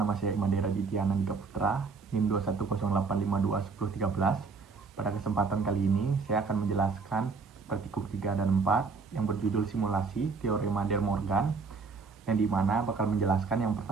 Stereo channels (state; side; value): quieter; left; 4.8 dB